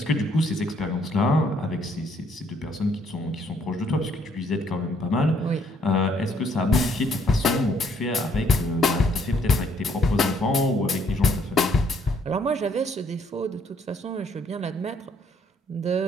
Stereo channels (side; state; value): both; normal; correlation 0.67